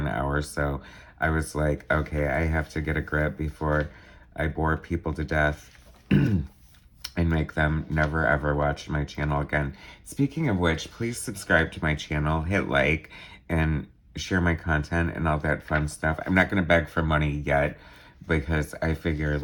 hour, so I was like, okay, I have to get a grip before I bore people to death and make them never ever watch my channel again. Speaking of which, please subscribe to my channel, hit like, and share my content and all that fun stuff. I'm not going to beg for money yet because I figure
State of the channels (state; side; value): identical; both; correlation 1.00